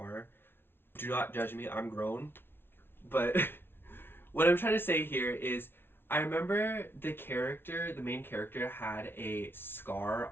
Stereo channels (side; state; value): right; late; 0.11 ms